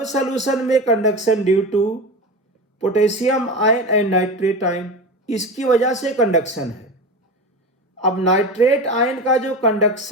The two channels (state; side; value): normal; both; correlation 0.26